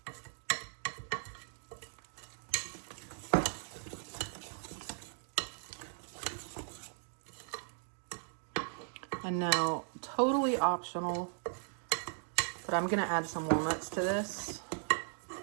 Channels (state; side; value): silent; left; digital silence